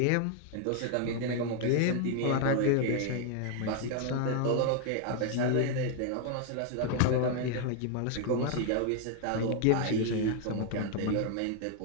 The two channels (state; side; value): different; both; correlation 0.01